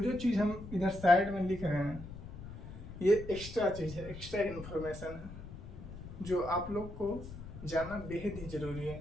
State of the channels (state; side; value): noise; left; rumble, 12 dB below the sound